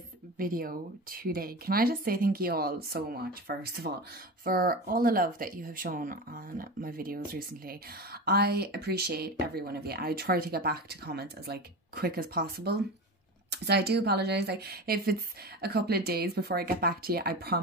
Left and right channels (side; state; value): both; normal; correlation 0.26